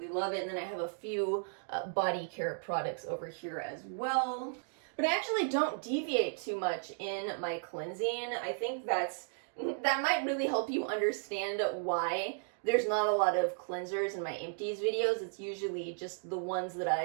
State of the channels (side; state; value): left; silent; digital silence